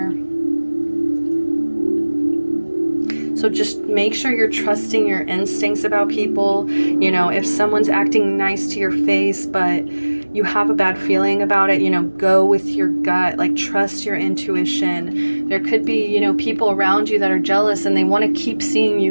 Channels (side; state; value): both; inverted; correlation -1.00